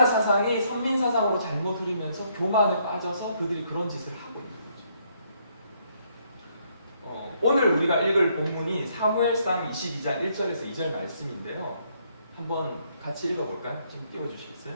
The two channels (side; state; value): both; inverted; correlation -0.71